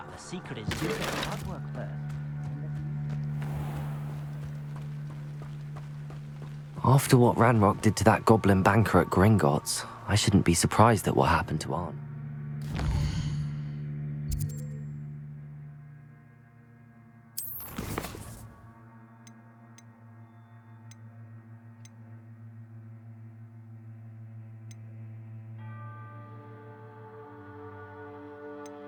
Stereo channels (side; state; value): both; identical; correlation 1.00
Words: The secret is you get the hard work first. After what Ranrock did to that goblin banker at Gringotts, I shouldn't be surprised at what happened to Arn.